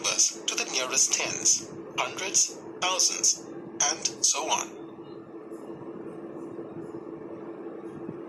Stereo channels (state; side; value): identical; both; correlation 1.00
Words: to the nearest tens, hundreds, thousands, and so on.